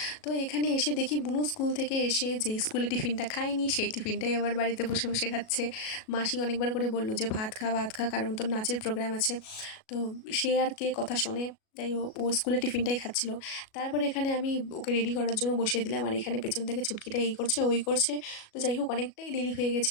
তো এখানে এসে দেখি বুনু স্কুল থেকে এসে যেই স্কুলে টিফিনটা খায়নি সেই টিফিনটাই আবার বাড়িতে বসে বসে খাচ্ছে। মাসি অনেকবার করে বলল যে ভাত খা ভাত খা, কারণ তোর নাচের প্রোগ্রাম আছে। তো সে আর কে কথা শোনে, যাই হোক ও স্কুলে টিফিনটাই খাচ্ছিল। তারপরে এখানে আমি ওকে রেডি করার জন্য বসিয়ে দিলাম, আর এখানে পেছন থেকে ছুটকিটা এই করছে ওই করছে। তো যাই হোক অনেকটাই দেরি হয়ে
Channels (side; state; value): right; late; 37 ms